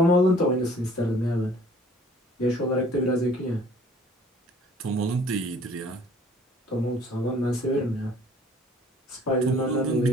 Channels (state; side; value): normal; both; correlation 0.54